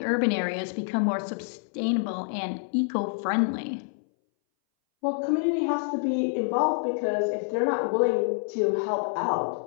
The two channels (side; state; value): right; silent; 60 dB below the other